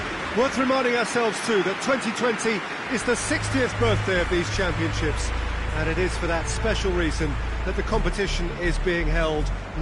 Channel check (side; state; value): both; identical; correlation 1.00